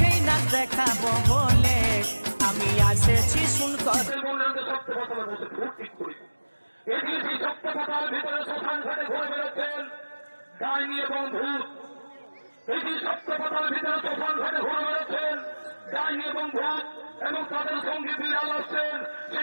না দেখাবো বলে আমি এসেছি শুনকর ভিতরে শ্মশান ঘাটে ঘুরে বেড়াচ্ছেন ডাইনি এবং ভূত। এটি সত্যপতার ভিতরে শ্মশান ঘাটে ঘুরে বেড়াচ্ছেন ডাইনি এবং ভূত এবং তাদের সঙ্গে বিড়াল আসছেন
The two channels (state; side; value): inverted; both; correlation -1.00